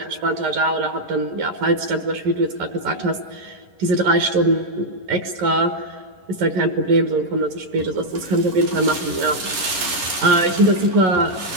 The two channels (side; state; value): left; late; 11 ms